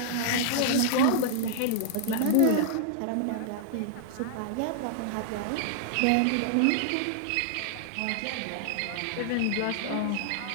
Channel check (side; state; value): both; different; correlation -0.01